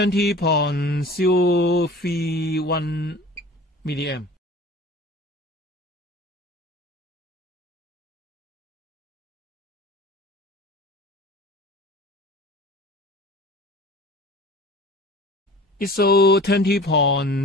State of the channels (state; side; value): normal; both; correlation 0.41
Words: milliamp. It shows